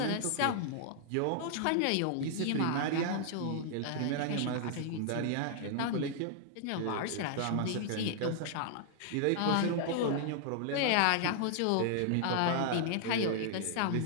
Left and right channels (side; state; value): both; different; correlation -0.01